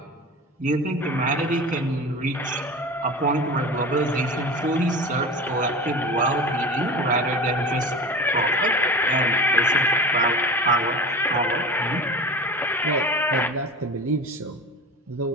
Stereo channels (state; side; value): normal; both; correlation 0.32